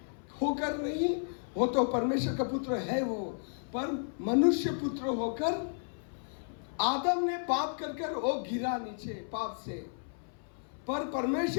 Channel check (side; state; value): right; silent; 56 dB below the other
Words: होकर नहीं, वो तो परमेश्वर का पुत्र है वो, पर मनुष्य पुत्र होकर आदम ने पाप कर वो गिरा नीचे पाप से, पर